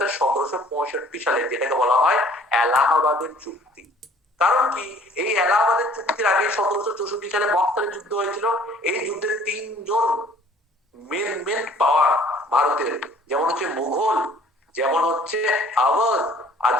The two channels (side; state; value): both; normal; correlation 0.55